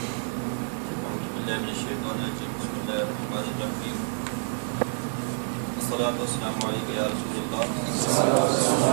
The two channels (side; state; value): left; silent; 60 dB below the other